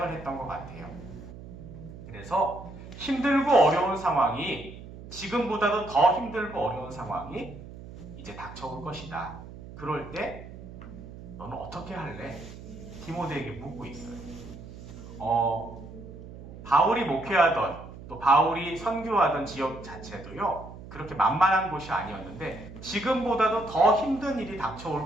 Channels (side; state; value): right; noise; hum, 14 dB below the sound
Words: 했던 것 같아요. 그래서 힘들고 어려운 상황이, 지금보다도 더 힘들고 어려운 상황이 이제 닥쳐올 것이다. 그럴 때 너는 어떻게 할래? 디모데에게 묻고 있어요. 바울이 목회하던 또 바울이 선교하던 지역 자체도요, 그렇게 만만한 곳이 아니었는데 지금보다도 더 힘든 일이